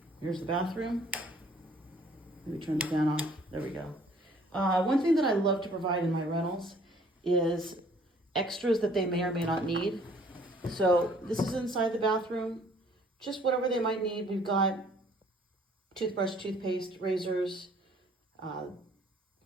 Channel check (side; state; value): both; normal; correlation 0.58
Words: here's the bathroom. Let me turn the fan off. There we go. One thing that I love to provide in my rentals is extras that they may or may not need. So this is inside the bathroom, just whatever they might need. We've got toothbrush, toothpaste, razors,